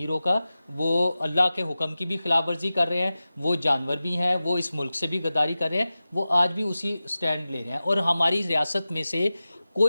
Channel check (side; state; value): both; inverted; correlation -0.95